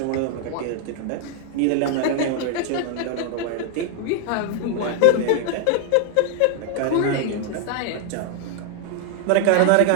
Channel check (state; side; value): different; both; correlation 0.00